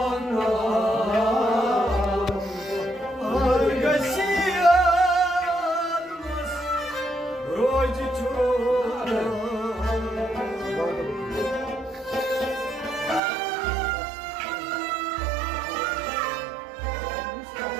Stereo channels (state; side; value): drops out; left; at 13.2 s